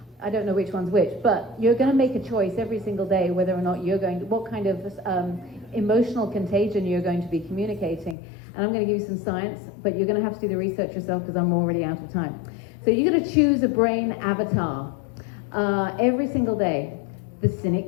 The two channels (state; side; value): drops out; right; at 8.2 s